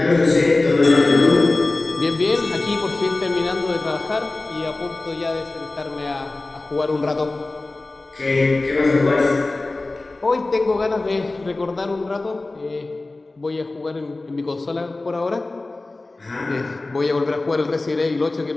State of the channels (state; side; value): quieter; right; 3.1 dB